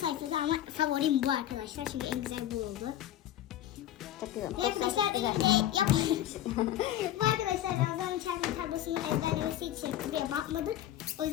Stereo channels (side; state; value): right; quieter; 12.3 dB